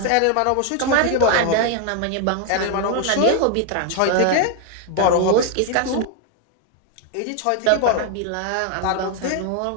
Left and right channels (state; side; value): different; both; correlation 0.01